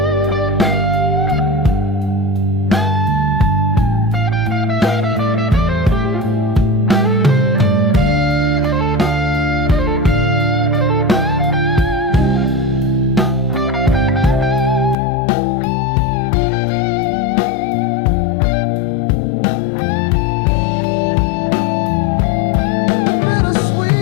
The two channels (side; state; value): right; drops out; at 15.0 s